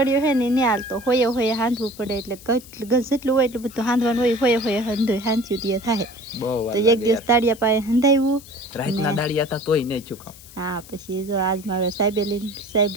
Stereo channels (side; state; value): left; noise; hiss, 20 dB below the sound